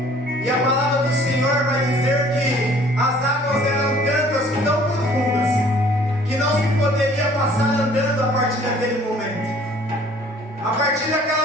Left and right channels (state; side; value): normal; both; correlation 0.55